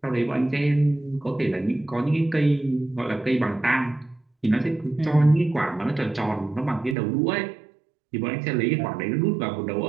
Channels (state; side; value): drops out; left; at 7.0 s